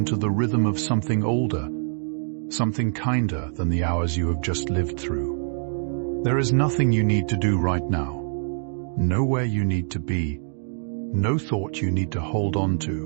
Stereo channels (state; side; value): silent; left; digital silence